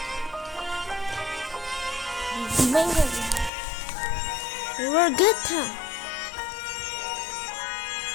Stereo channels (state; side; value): drops out; right; at 3.5 s